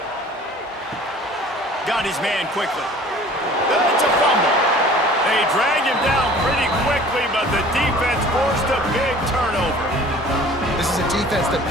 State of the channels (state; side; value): normal; both; correlation 0.48